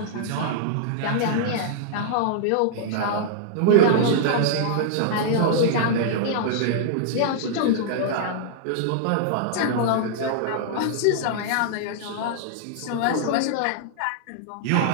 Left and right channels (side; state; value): both; different; correlation -0.01